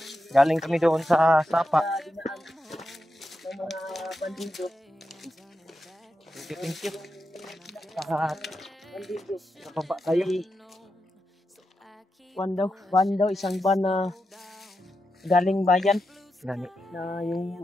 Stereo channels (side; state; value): both; normal; correlation 0.87